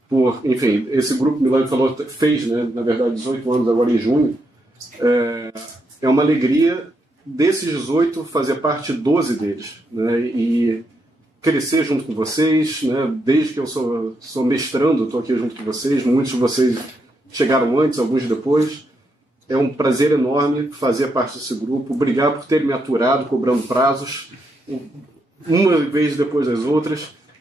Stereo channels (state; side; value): normal; both; correlation 0.80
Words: por, enfim, esse grupo, Milani falou, fez, né, na verdade, 18 anos agora em junho. É uma alegria desses 18 fazer parte 12 deles, né, e crescer junto com vocês, né, desde que eu sou mestrando, estou aqui junto com vocês, muitos de vocês chegaram antes, alguns depois. É um prazer enorme fazer parte desse grupo. Obrigado por terem me aturado, cobrando prazos, uma vez depois das outras,